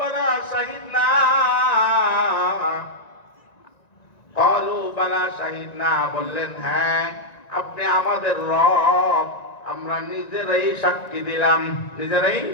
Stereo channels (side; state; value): right; late; 1.9 ms